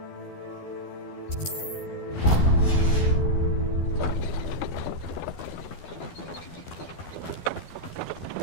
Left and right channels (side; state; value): right; late; 12 ms